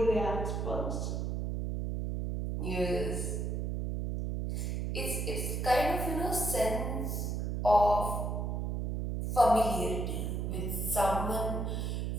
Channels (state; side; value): noise; right; hum, 1 dB below the sound